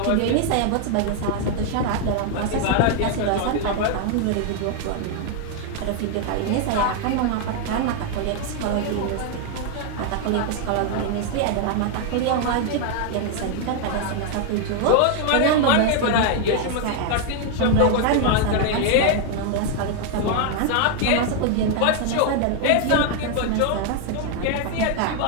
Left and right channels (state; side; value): different; both; correlation 0.00